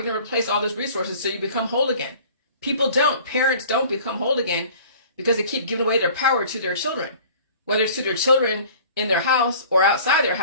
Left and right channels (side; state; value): both; inverted; correlation -0.47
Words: going to replace all those resources so you become whole again? Parents don't become whole again because they keep giving away their power to their children, whether it's to their children in their house or outside their